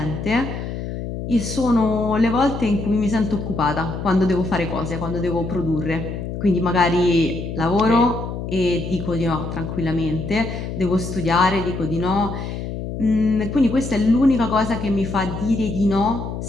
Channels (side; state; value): left; noise; hum, 6 dB below the sound